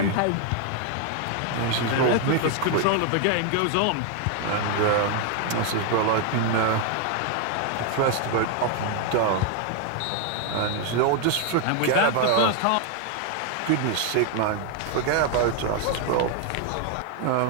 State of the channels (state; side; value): different; both; correlation 0.01